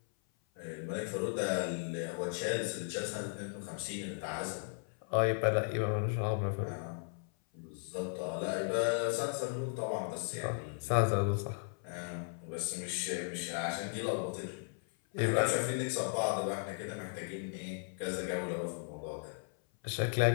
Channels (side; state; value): right; silent; 54 dB below the other